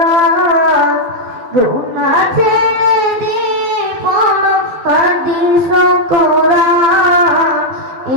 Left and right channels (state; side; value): late; left; 12 ms